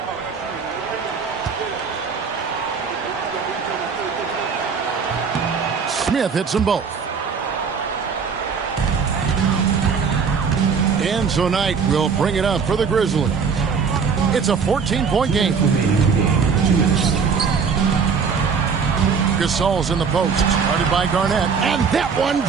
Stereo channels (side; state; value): left; quieter; 5.9 dB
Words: Smith hits them both. And tonight we'll bring it up for the Grizzlies. It's a 14-point game. Gasol's in the post, started by Garnett, and that one